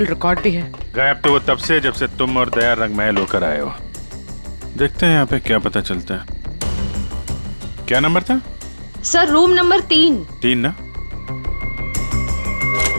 रिकॉर्ड भी है। गायब तो वो तब से जब से तुम और दया रंग महल होकर आए हो। देखते हैं यहाँ पे क्या पता चलता है। क्या नंबर था? Sir, room number 3। 3 ना?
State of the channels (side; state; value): both; inverted; correlation -1.00